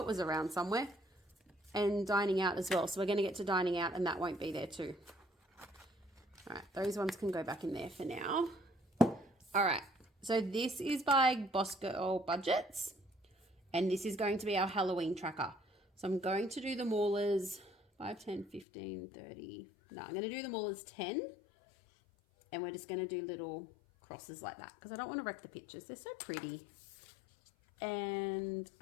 was around somewhere. And dining out as well. So we're going to get to dining out and that won't be there too. All right, those ones can go back in there for now. All right, so this is by Boss Girl Budgets, and this is going to be our Halloween tracker. So I'm going to do them all as 5, 10, 15, 30. No, I'm going to do them all as 10, and we're just going to do little crosses like that because I don't want to wreck the pictures. They're so pretty. And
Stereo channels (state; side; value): drops out; right; at 18.7 s